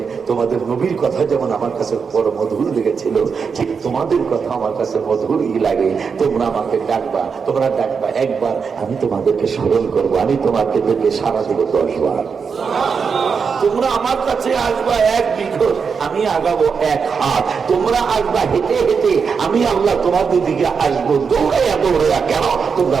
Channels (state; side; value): quieter; left; 5.8 dB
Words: তোমাদের নবীর কথা যেমন আমার কাছে বড় মধুর লেগেছিল, ঠিক তোমাদের কথা আমার কাছে মধুরই লাগে। তোমরা আমাকে ডাকবা, তোমরা ডাকবা একবার, আমি তোমাদেরকে স্মরণ করবো, আমি তোমাদেরকে সারা দিব 10 বার। তোমরা আমার কাছে আসবা 1 বিঘত, আমি আগাবো 1 হাত। তোমরা আসবা হেঁটে হেঁটে, আমি আল্লাহ তোমাদের দিকে আসবো দৌড়াইয়া দৌড়াইয়া। কেন? তোমরা